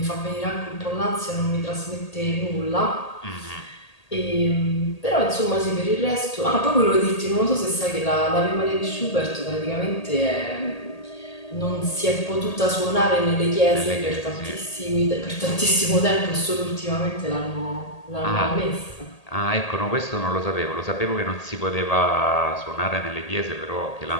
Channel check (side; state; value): right; late; 1.8 ms